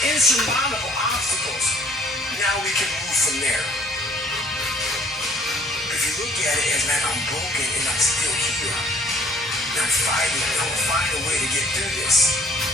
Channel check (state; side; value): normal; both; correlation 0.58